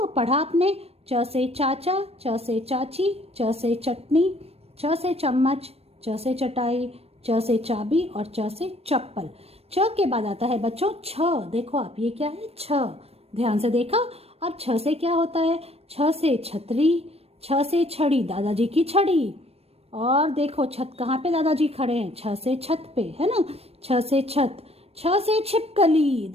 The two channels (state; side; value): late; left; 0.29 ms